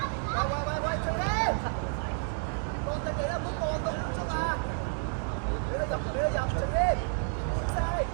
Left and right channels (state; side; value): silent; left; 58 dB below the other